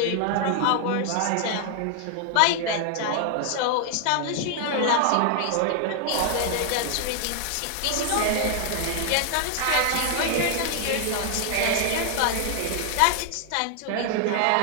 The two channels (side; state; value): both; different; correlation 0.00